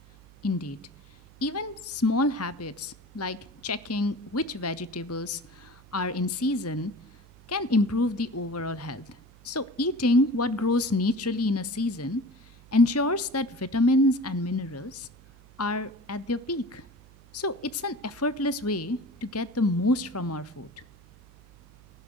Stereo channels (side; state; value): right; noise; hum, 24 dB below the sound